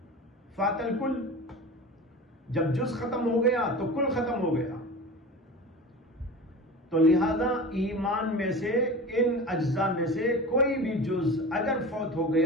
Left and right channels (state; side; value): normal; both; correlation 0.33